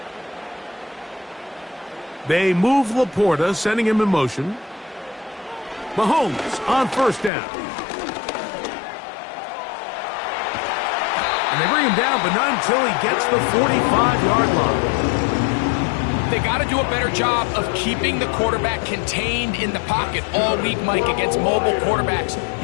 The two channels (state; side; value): drops out; right; at 7.3 s